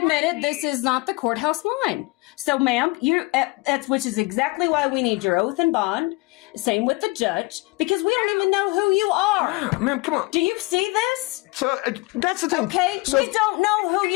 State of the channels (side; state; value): right; quieter; 23.9 dB